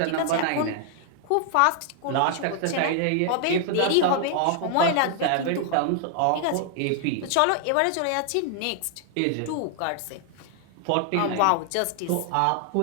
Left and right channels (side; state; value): both; different; correlation 0.00